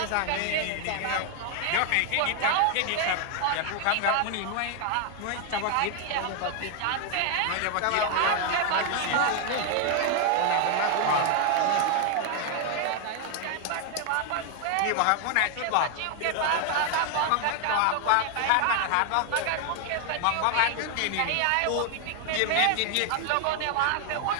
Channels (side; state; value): both; different; correlation 0.00